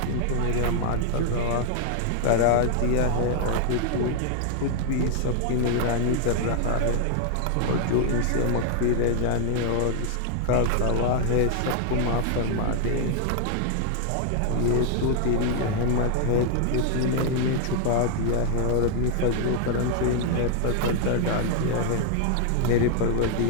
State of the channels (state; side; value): different; both; correlation 0.00